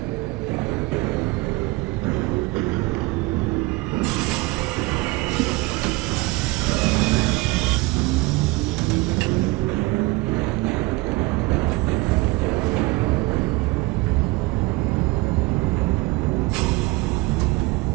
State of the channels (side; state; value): left; quieter; 22.2 dB